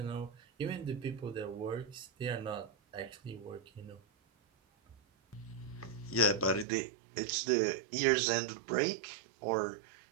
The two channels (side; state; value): left; drops out; at 6.7 s